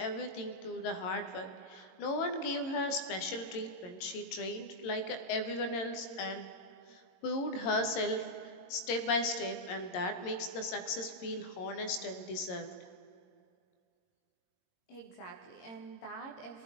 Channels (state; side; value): late; right; 22 ms